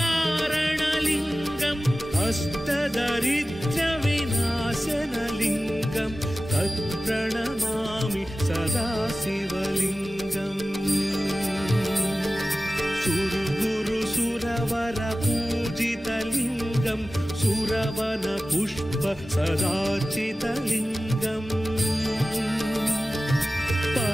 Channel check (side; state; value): both; normal; correlation 0.96